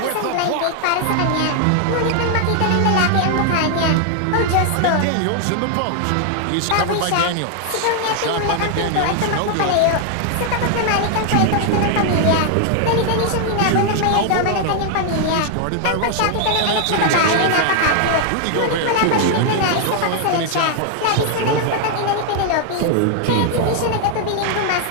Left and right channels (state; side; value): different; both; correlation 0.00